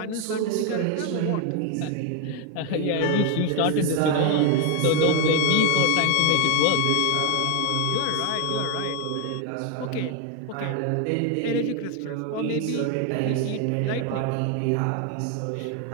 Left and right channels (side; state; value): both; different; correlation 0.01